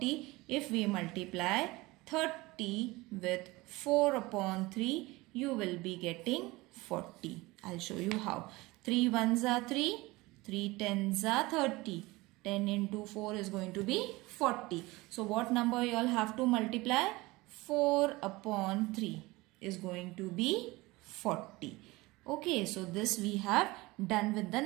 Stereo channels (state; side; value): quieter; left; 21.5 dB